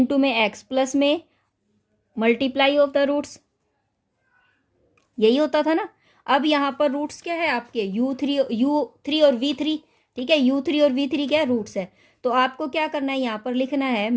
में एक्स प्लस में मल्टीप्लाई ऑफ द रूट्स, यही होता था ना। अब यहाँ पर रूट्स क्या है आपके u3 और v3, ठीक है, u3 और v3 क्या है, रूट्स है। तो आपको क्या करना है, यहाँ पर लिखना है,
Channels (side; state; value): both; identical; correlation 1.00